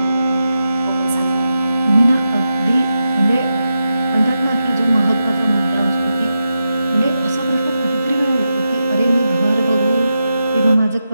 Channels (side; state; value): both; inverted; correlation -0.88